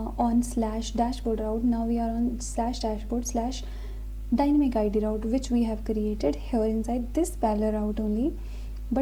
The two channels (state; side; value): identical; both; correlation 1.00